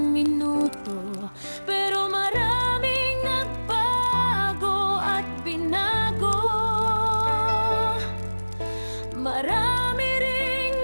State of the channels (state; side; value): inverted; both; correlation -1.00